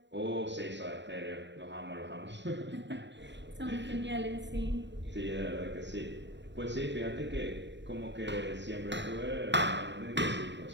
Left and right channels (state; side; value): late; left; 0.52 ms